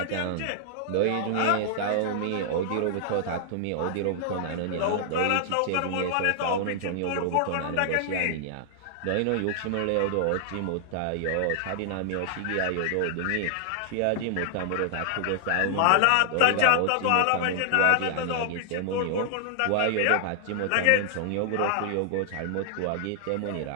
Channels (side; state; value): both; different; correlation -0.01